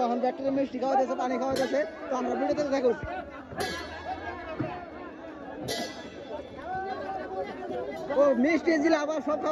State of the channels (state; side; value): identical; both; correlation 1.00